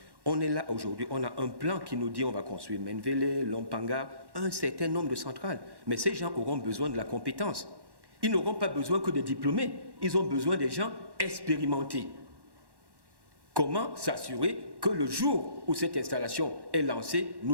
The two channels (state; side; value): late; left; 1.1 ms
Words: on est là aujourd'hui, on a un plan qui nous dit on va construire Menvele, Lompanga, un certain nombre de centrales. Mais ces gens auront besoin de la compétence. Ils n'auront pas besoin que des diplômés, ils ont besoin des gens expérimentés. Comment s'assurer que le jour où cette installation est lancée,